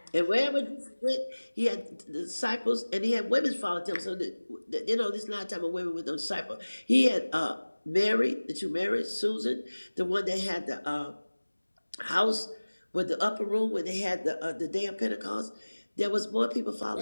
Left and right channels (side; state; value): both; inverted; correlation -1.00